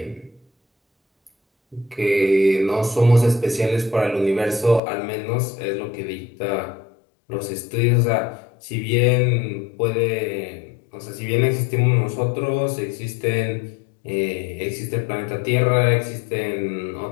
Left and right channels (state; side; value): drops out; right; at 4.8 s